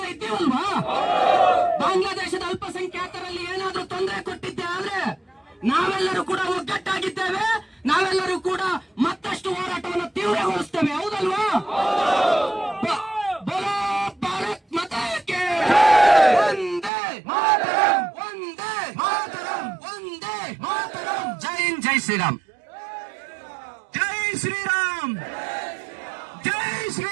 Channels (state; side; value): drops out; left; at 16.9 s